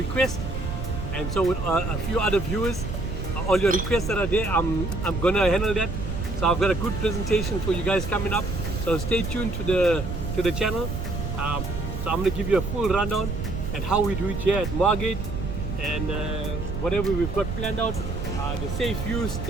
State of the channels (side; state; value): right; noise; rumble, 5 dB below the sound